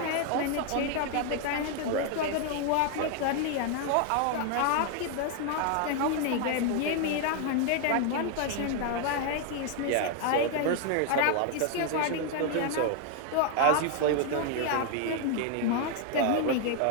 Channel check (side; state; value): both; different; correlation 0.00